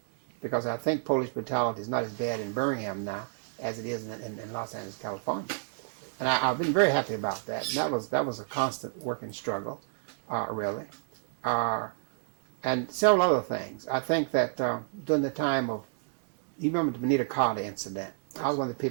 because I think police brutality is not as bad in Birmingham now as it is in Los Angeles, California. And I've been very happy about that. And that was a constant working struggle, really. And several other things. I think that during the time of, you remember the Benita Carter incident, I was one of the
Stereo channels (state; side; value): silent; left; digital silence